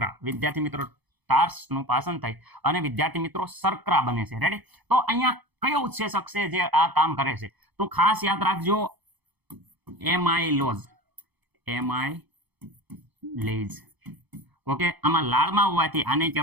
વિદ્યાર્થી મિત્રો ટાર્સ નું પાચન થાય અને વિદ્યાર્થી મિત્રો શર્કરા બને છે. રેડી? તો અહીંયા કયો ઉત્સેચક છે જે આ કામ કરે છે? તો ખાસ યાદ રાખજો એમાઇલોઝ. એમાઇલેઝ. ઓકે, આમાં લાળમાં હોવાથી આને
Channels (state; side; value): late; left; 1.0 ms